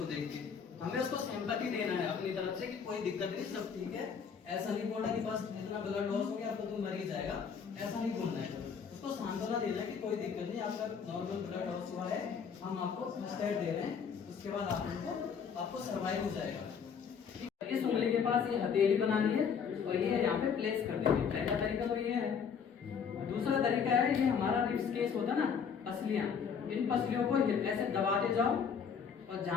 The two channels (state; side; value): quieter; right; 6.7 dB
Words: देख के। हमें उसको सिंपैथी देना है अपनी तरफ से कि कोई दिक्कत नहीं, सब ठीक है। ऐसा नहीं बोलना कि बस इतना ब्लड लॉस हो गया तो तुम मर ही जाएगा, ऐसा नहीं बोलना है। उसको सांत्वना देना कि कोई दिक्कत नहीं, आपका नॉर्मल ब्लड लॉस हुआ है, हम आपको फर्स्ट एड दे रहे हैं, उसके बाद आपको सर्वाइव हो जाएगा। इस उंगली के पास ये हथेली बनानी है और ये यहाँ पे प्लेस कर देंगे। पहला तरीका तो ये है। दूसरा तरीका है, ये हमारा रिब्स केस होता है ना, पसलियां, इन पसलियों को ऐसे दबाते जाओ और